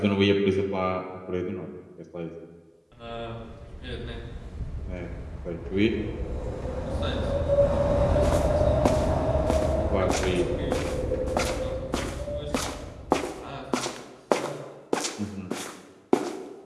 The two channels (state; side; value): identical; both; correlation 1.00